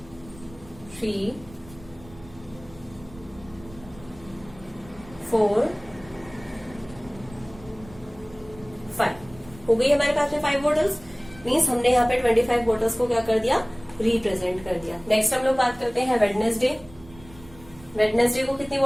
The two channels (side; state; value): right; noise; rumble, 20 dB below the sound